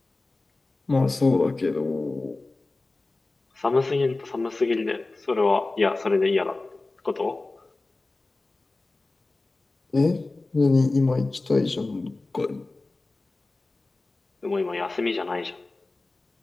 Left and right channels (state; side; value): quieter; right; 3.2 dB